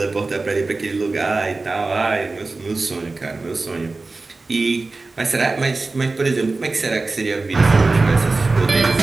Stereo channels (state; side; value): quieter; left; 3.6 dB